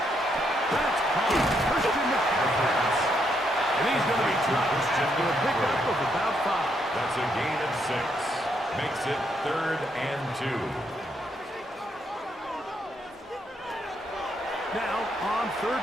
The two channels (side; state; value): both; normal; correlation 0.76